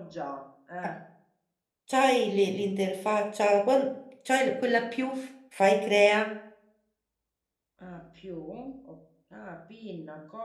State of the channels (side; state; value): both; identical; correlation 1.00